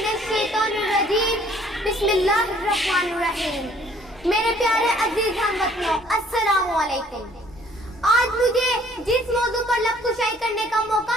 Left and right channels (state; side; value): normal; both; correlation 0.59